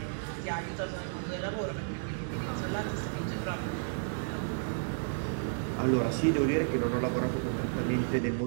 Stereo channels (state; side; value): silent; left; 56 dB below the other